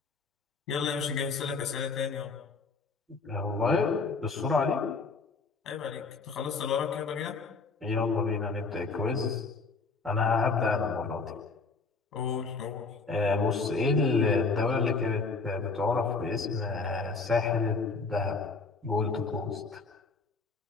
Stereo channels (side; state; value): right; quieter; 4.2 dB